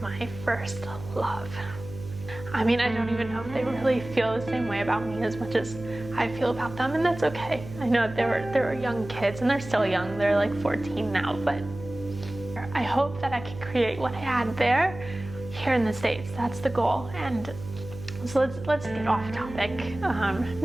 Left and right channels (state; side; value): noise; right; hum, 13 dB below the sound